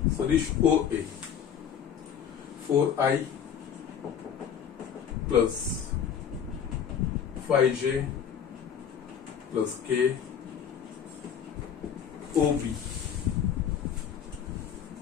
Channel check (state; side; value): quieter; right; 8.1 dB